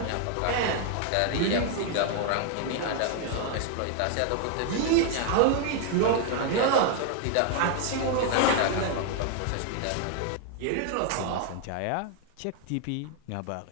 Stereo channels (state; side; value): different; both; correlation 0.00